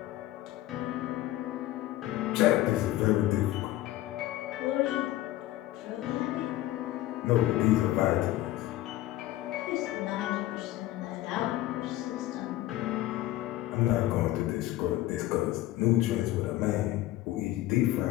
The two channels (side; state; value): right; quieter; 15.6 dB